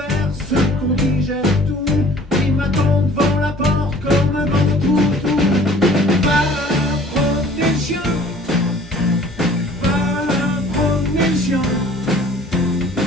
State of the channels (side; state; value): both; normal; correlation 0.51